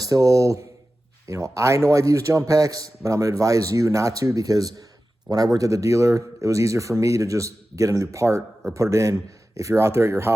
I know I've used jump packs, but I'm going to advise you not to, because when I worked at the dealer, it was easier for me to just get a new part or put it in. If you're out there at your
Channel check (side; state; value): both; normal; correlation 0.94